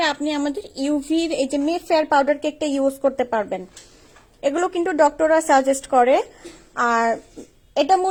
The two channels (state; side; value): identical; both; correlation 1.00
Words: আপনি আমাদের ইউভির এই যে মে ফেয়ার পাউডার কেকটা ইউজ করতে পারবেন। এগুলো কিন্তু ডক্টররা সাজেস্ট করে। আর এটা